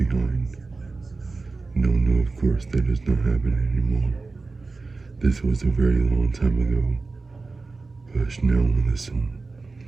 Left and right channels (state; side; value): quieter; left; 3.8 dB